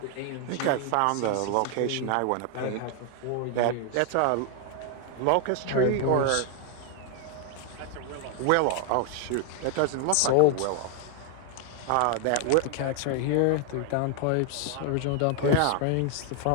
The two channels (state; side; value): different; both; correlation 0.00